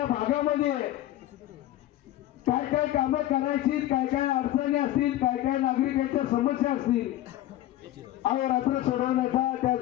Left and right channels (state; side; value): quieter; right; 14.1 dB